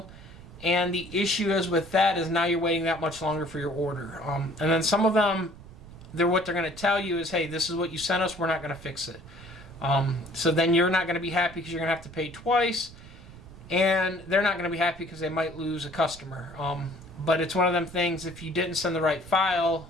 And the issue is with that is now you're waiting that much longer for your order. And then some of them, what they're going to tell you is, hey, this is what you sent us, we're not going to fix it. So then you're not going to be happy because you're going to have to pay twice, and they're not going to be happy because they might lose a customer. But it's one of them things, if you didn't send the right file,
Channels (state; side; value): noise; right; rumble, 18 dB below the sound